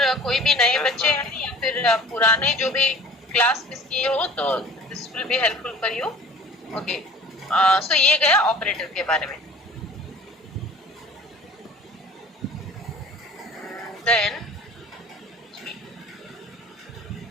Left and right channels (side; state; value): both; normal; correlation 0.45